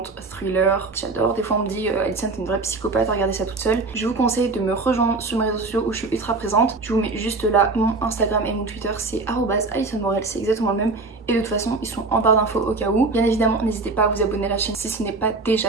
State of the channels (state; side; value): quieter; left; 3.7 dB